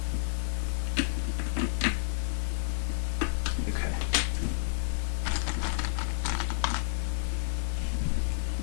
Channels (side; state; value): right; silent; 58 dB below the other